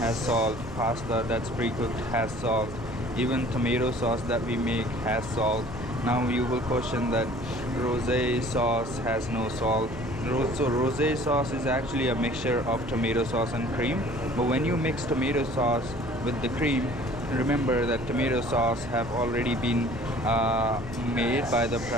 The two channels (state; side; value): noise; right; hum, 18 dB below the sound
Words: salt, pasta that's pre-cooked has salt, even tomato sauce that we make has salt. Now you will question that rosé sauce has no salt. So rosé sauce is actually a mixture of tomato sauce and cream. But when you mix tomato sauce with the cream, remember that tomato sauce have already been made by the